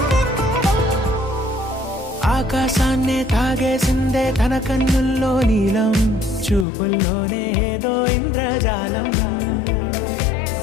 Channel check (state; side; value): drops out; right; at 6.7 s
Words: ఆకాశాన్నే తాగేసిందే తన కన్నుల్లో నీలం చూపుల్లోనే ఏదో ఇంద్రజాలం